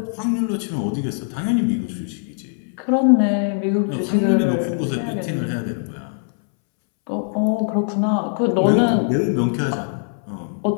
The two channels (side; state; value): right; silent; 65 dB below the other